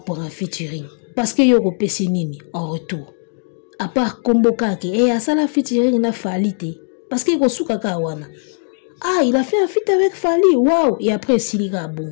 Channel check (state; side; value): silent; right; 61 dB below the other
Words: pour un featuring. Parce que yoko pesi nini en retour. À part Kombo Kake. Et à ça la featuring na Fally te. Parce que yoko souka kawana. Ah, il a fait un feat avec Fally, waouh! Et après, Silika,